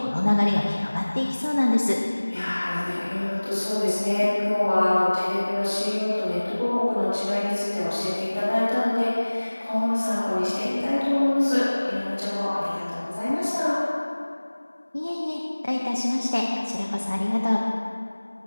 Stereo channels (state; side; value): inverted; both; correlation -1.00